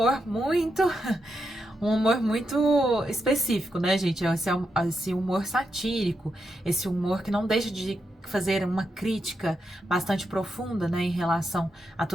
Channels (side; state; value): both; normal; correlation 0.84